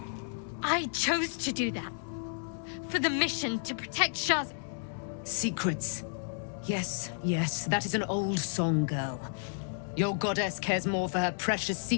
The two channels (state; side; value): silent; right; digital silence